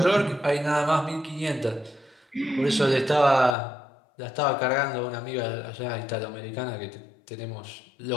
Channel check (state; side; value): drops out; right; at 3.6 s